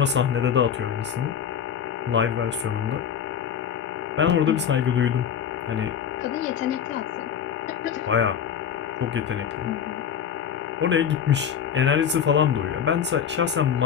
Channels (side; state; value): right; quieter; 8.2 dB